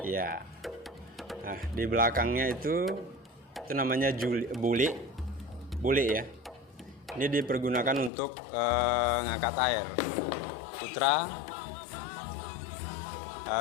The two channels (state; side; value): drops out; right; at 8.1 s